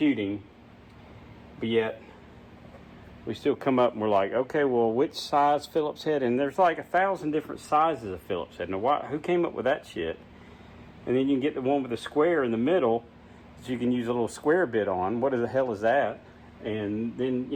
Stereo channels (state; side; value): identical; both; correlation 1.00